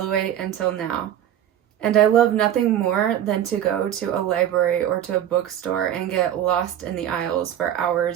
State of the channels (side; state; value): left; quieter; 10.9 dB